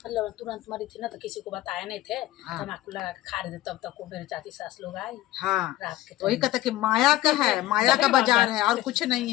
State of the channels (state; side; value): quieter; right; 15.5 dB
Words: मतलब तुरंत मरी थी ना, तो किसी को बताए नहीं थे, तम्बाकू लगा के खा रहे थे, तब तक वो मेरे चाची सास लोग आई। रात के वही कहता कि माया का है, माया का बाजार है और कुछ नहीं